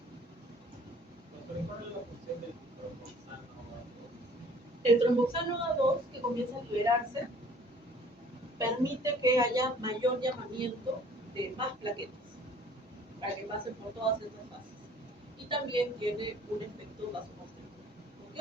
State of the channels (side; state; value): both; normal; correlation 0.53